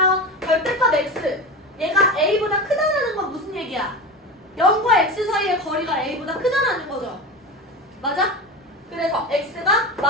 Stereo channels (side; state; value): both; normal; correlation 0.25